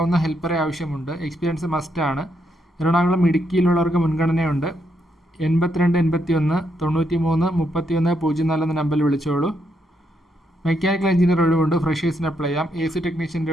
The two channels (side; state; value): both; normal; correlation 0.78